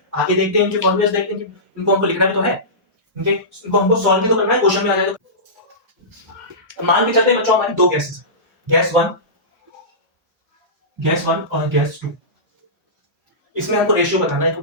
आगे देखते हैं इनके फॉर्मूलेस, देखते हैं कि इनको हमको लिखना भी तो है, इनको हमको सॉल्व भी तो करना है, क्वेश्चन में आ जाए तो। मान के चलते हैं बच्चों हमारी दो गैसेस है, गैस वन और गैस टू। इसमें हमको रेशियो बताना है,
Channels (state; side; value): normal; both; correlation -0.20